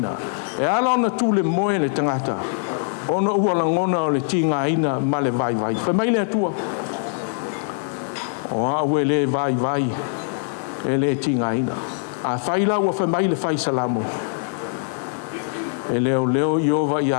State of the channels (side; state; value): right; silent; digital silence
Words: E ala na tūle moe le tangata. Ona ua langona o le tinga ina ma le vai. Wha mai le atua. O au e le vai, e le tinga ina. A whaila ua wha mai le whai salamo. E leo iova